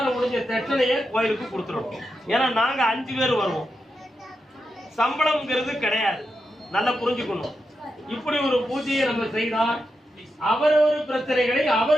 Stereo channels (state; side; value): normal; both; correlation 0.87